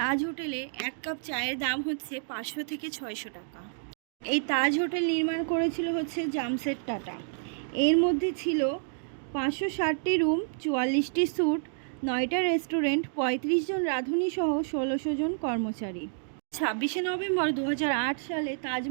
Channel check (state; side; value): silent; left; digital silence